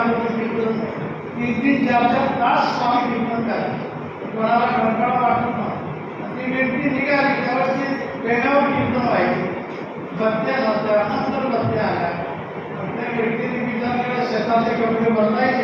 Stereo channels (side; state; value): both; identical; correlation 1.00